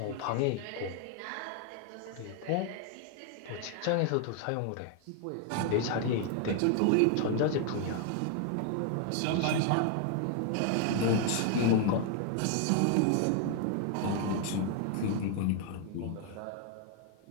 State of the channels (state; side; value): different; both; correlation 0.01